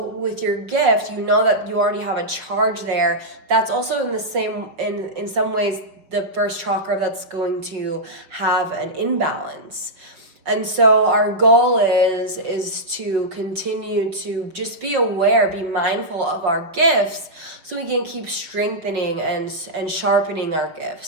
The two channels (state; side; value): late; left; 5.9 ms